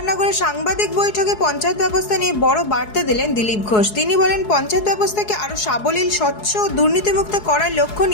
সাংবাদিক বৈঠকে পঞ্চায়েত ব্যবস্থা নিয়ে বড় বার্তা দিলেন দিলীপ ঘোষ। তিনি বলেন, পঞ্চায়েত ব্যবস্থাকে আরও সাবলীল, স্বচ্ছ ও দুর্নীতিমুক্ত করার লক্ষ্য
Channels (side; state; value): right; late; 4.7 ms